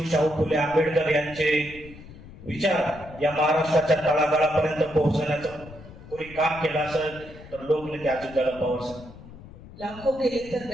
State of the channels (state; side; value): noise; left; rumble, 18 dB below the sound